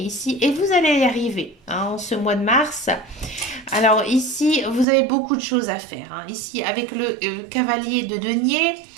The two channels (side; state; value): left; drops out; at 4.9 s